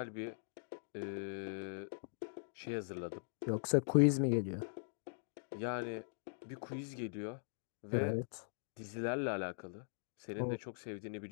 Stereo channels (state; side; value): silent; right; digital silence